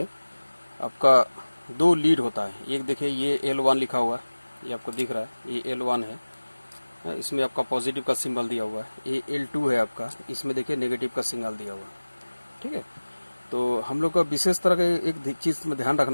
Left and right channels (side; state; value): both; inverted; correlation -1.00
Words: आपका दो लीड होता है। एक देखिए ये L1 लिखा हुआ है, ये आपको दिख रहा है, ये L1 है। इसमें आपका पॉजिटिव का सिंबल दिया हुआ है। ये L2 है आपका, इसमें देखिए नेगेटिव का सिंबल दिया हुआ है। ठीक है। तो हम लोग का विशेष तरह का एक चीज़ में ध्यान